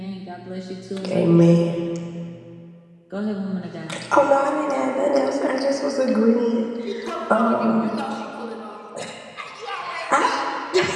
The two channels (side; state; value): both; identical; correlation 1.00